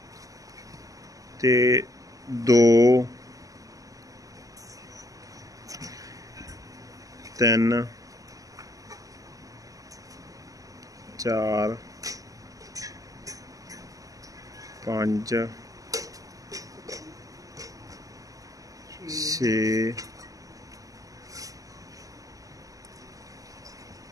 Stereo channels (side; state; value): left; late; 0.17 ms